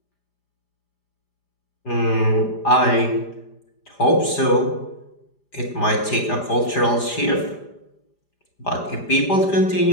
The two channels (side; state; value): right; late; 5.0 ms